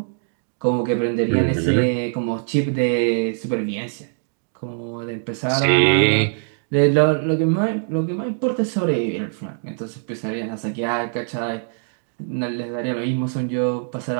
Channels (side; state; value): left; silent; digital silence